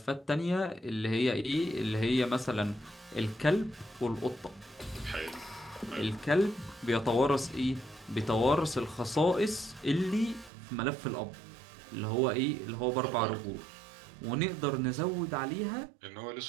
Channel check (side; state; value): left; drops out; at 10.5 s